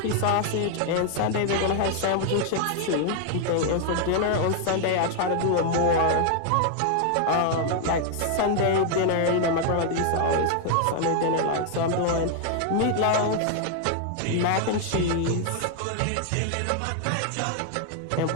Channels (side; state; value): both; different; correlation 0.00